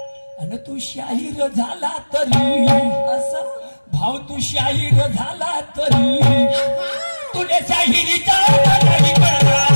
झाला तरी असं भाव तू शाहीर झाला तरी तुले शाहिरीचा नाही कळला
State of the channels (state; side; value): inverted; both; correlation -1.00